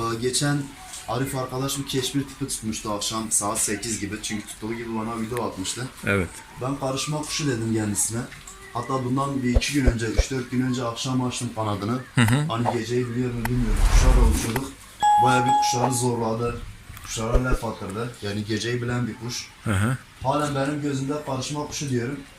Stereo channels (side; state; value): both; identical; correlation 1.00